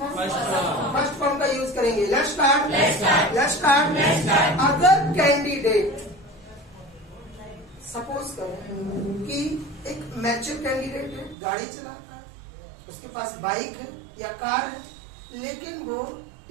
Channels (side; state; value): left; drops out; at 11.4 s